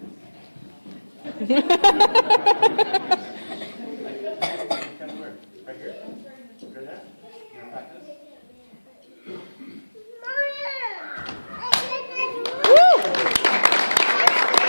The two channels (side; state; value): both; inverted; correlation -1.00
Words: Kind of where? Right here? Hear that? You want to practice?